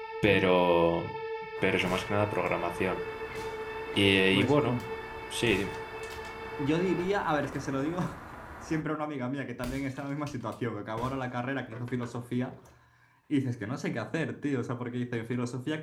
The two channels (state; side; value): identical; both; correlation 1.00